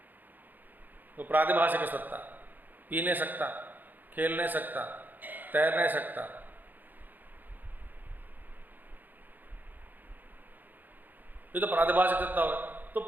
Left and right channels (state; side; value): late; left; 0.086 ms